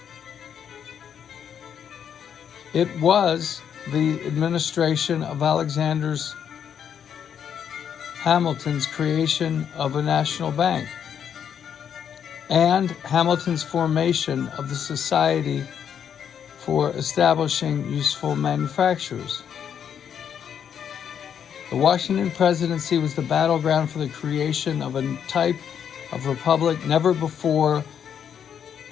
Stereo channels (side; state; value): right; quieter; 8.3 dB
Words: It was the administration of Alexander Hamilton's creation of a national bank and Hamilton's formation of the Society for Establishing Useful Manufactures. The Washington Presidency was the battleground for the creation of a type of republic never before